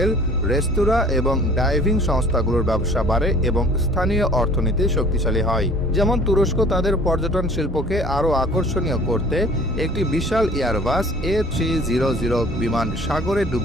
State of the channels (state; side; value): normal; both; correlation 0.50